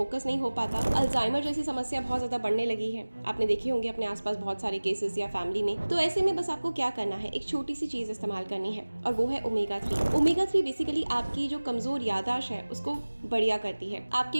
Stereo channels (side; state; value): both; inverted; correlation -1.00